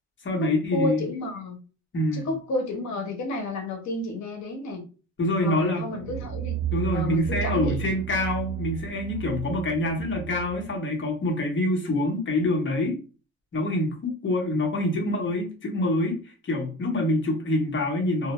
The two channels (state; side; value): normal; both; correlation 0.32